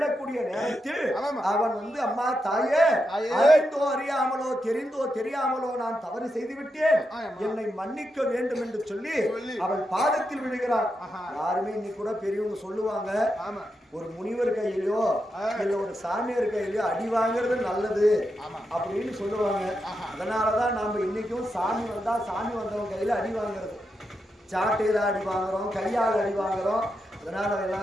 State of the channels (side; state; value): both; normal; correlation 0.86